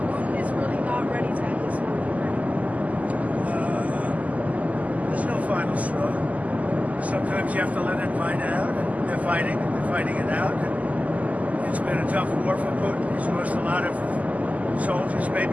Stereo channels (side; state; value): left; late; 0.074 ms